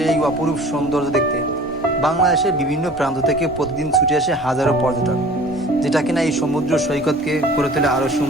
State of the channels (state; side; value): normal; both; correlation 0.45